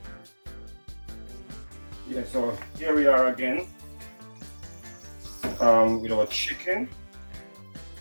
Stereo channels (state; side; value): inverted; both; correlation -1.00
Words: Yeah, so here we are again with our chicken.